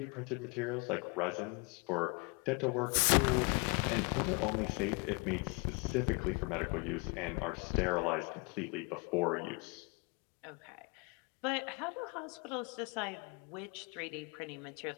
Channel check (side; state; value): right; quieter; 30.8 dB